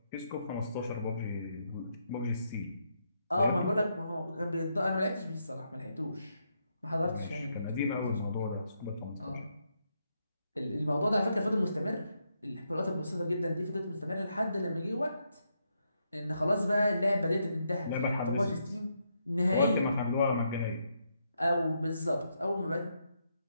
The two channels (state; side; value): inverted; both; correlation -0.79